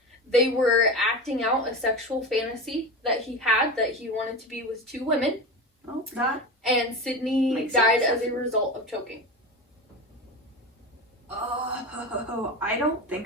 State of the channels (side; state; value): both; normal; correlation 0.26